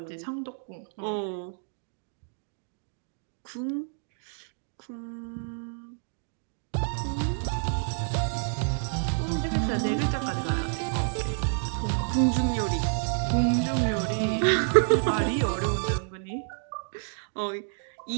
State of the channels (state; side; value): silent; left; 59 dB below the other